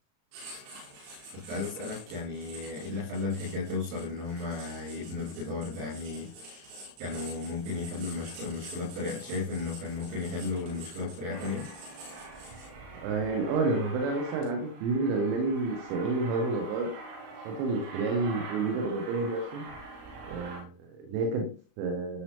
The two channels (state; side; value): late; left; 35 ms